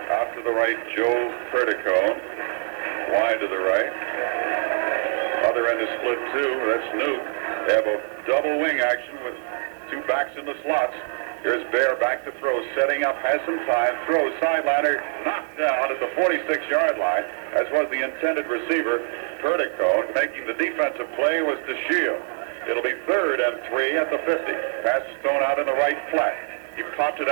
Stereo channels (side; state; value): left; silent; digital silence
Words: Out to the right, Joe Perdico. Wide to the right. Other end is split two. That's Newt. They have a double wing action with two backs in the slots. Here's Bear back to throw, setting up, has some time, throws, sideliner, knocked down at the 46-yard line, as was the intended receiver, Perdico. Making the defensive play was DeShield. It'll be 3rd and 3 at the 50. Pass is thrown out in the right flat. He popped it